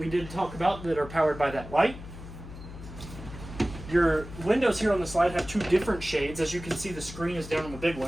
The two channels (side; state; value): left; noise; hum, 13 dB below the sound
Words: did talk about that are powered by that light. Your windows here on the slide have 2 different shades. As you can see, the screen is down on the big